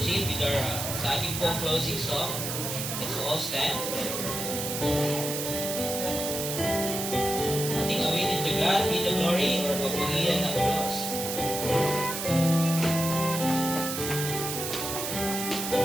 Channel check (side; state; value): right; noise; hiss, 4 dB below the sound